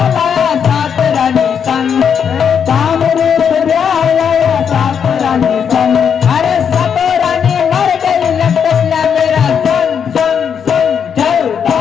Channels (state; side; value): quieter; right; 7.4 dB